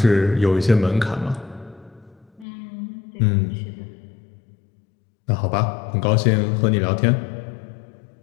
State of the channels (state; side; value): drops out; right; at 2.5 s